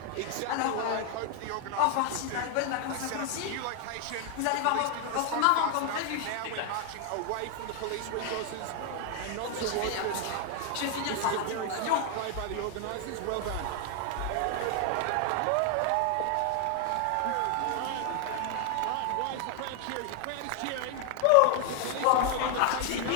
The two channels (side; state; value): both; different; correlation 0.00